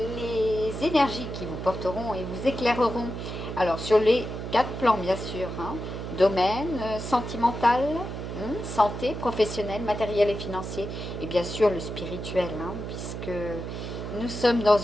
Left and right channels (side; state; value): right; noise; hum, 7 dB below the sound